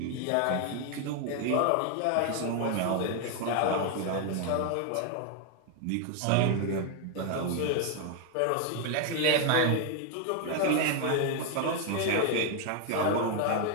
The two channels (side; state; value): both; different; correlation 0.01